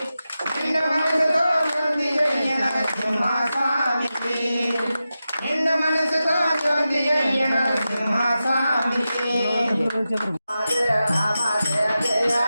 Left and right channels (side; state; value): both; inverted; correlation -0.92